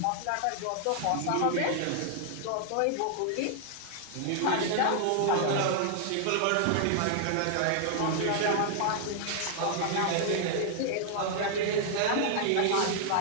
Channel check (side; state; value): both; different; correlation 0.00